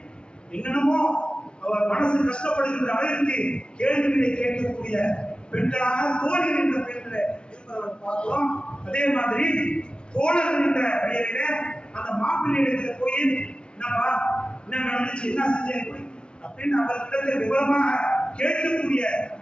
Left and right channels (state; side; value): late; right; 0.056 ms